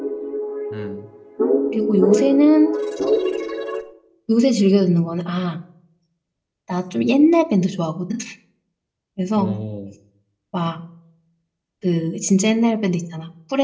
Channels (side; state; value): both; identical; correlation 1.00